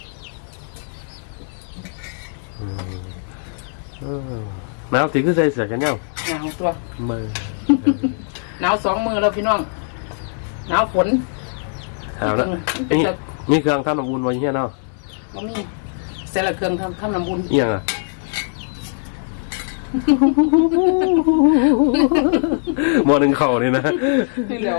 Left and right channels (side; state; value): right; silent; digital silence